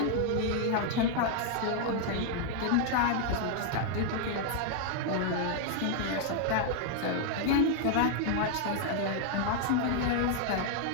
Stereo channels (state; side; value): different; both; correlation 0.00